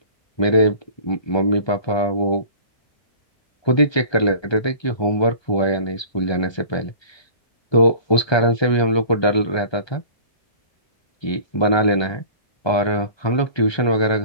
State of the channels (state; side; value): late; right; 1.2 ms